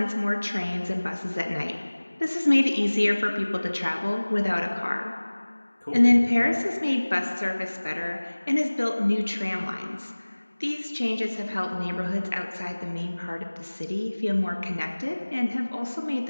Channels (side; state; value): both; inverted; correlation -1.00